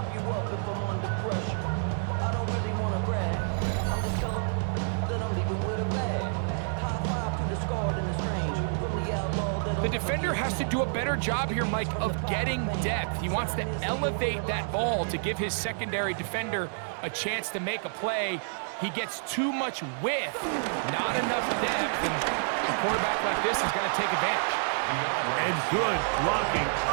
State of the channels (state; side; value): silent; left; digital silence